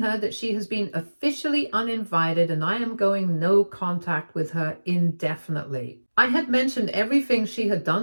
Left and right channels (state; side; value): inverted; both; correlation -1.00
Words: that she has been officially uninvited and I am going no contact with her indefinitely. I had mentioned everything she had